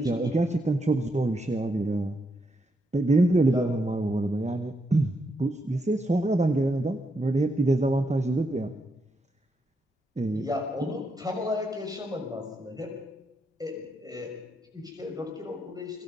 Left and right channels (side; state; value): both; normal; correlation 0.81